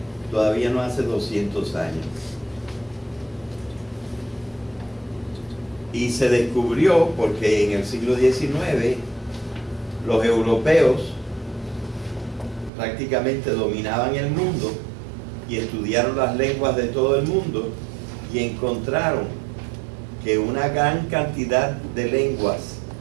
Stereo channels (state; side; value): drops out; left; at 12.7 s